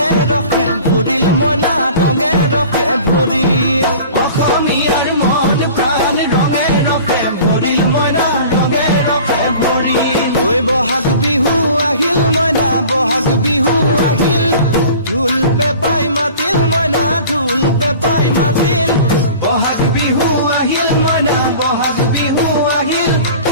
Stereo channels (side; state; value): both; inverted; correlation -0.43